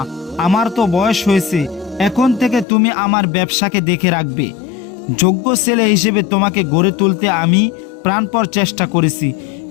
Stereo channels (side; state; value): right; drops out; at 2.7 s